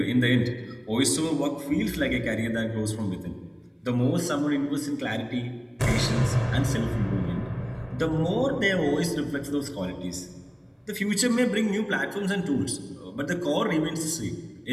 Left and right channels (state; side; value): identical; both; correlation 1.00